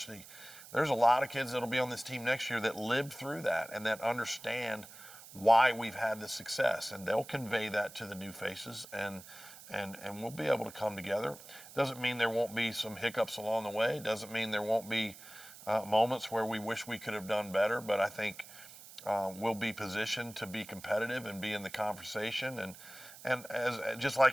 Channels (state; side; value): noise; right; hiss, 17 dB below the sound